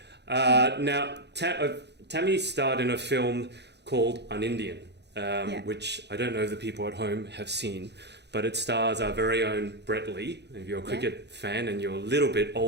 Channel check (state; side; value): late; left; 0.50 ms